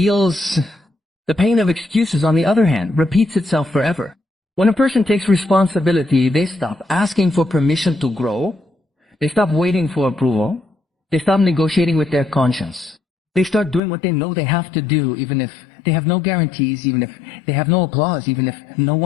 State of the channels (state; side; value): drops out; right; at 13.8 s